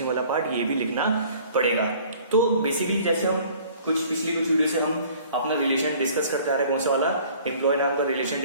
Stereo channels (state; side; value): inverted; both; correlation -0.52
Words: वाला पार्ट, ये भी लिखना पड़ेगा। तो बेसिकली जैसे हम पिछली कुछ वीडियो से हम अपना रिलेशन डिस्कस करते आ रहे हैं, कौन सा वाला, एम्प्लॉय नाम का रिलेशन